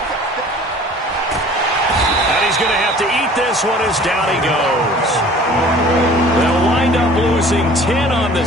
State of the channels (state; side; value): normal; both; correlation 0.48